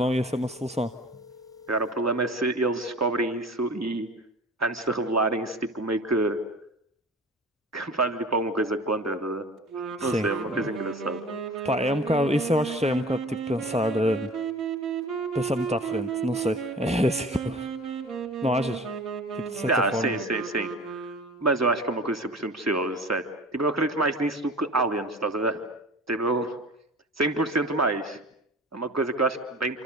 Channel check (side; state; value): both; normal; correlation 0.40